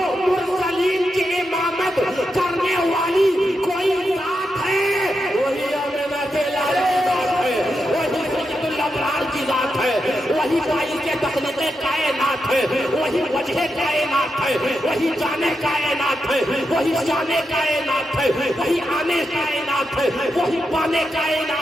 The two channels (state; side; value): normal; both; correlation 0.86